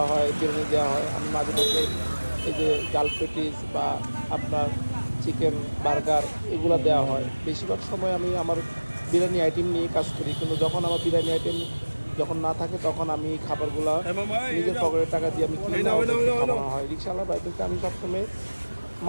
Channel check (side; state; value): both; inverted; correlation -1.00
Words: হয়, বিরিয়ানি দেওয়া হয়। আমি মাঝে মধ্যে এই যে ডাল পেটিস বা আপনার চিকেন বার্গার এগুলো দেওয়া হয়। বেশিরভাগ সময় আমি আমার বিরিয়ানি আইটেম নিয়ে কাজ করি, কিন্তু যখন আমার বিরিয়ানি আইটেম যখন না থাকে তখন আমি এই খাবারগুলা এ মামা, এই নিজের নাও, পকেটের টাকা দিয়ে আমি এই কিনে নাও, এই নাও, এই ওদেরকে নাও, এই নাও। খাওয়ানো হয়। রিক্সাওয়ালা ভাইদেরকে আমি সবসময়